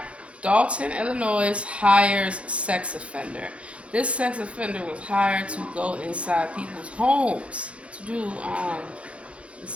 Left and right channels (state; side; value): late; left; 0.061 ms